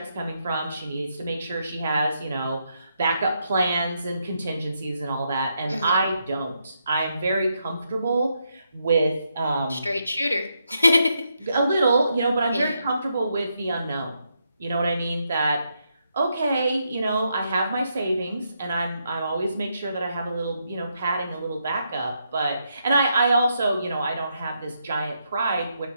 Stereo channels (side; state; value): both; inverted; correlation -0.80